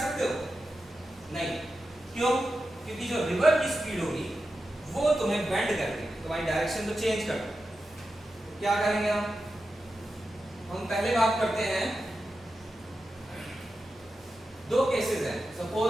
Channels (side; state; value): both; normal; correlation 0.91